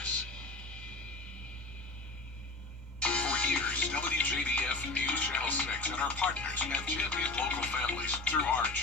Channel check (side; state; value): right; quieter; 3.2 dB